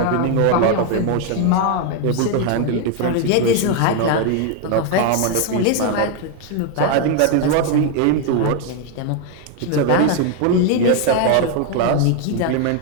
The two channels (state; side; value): different; both; correlation 0.01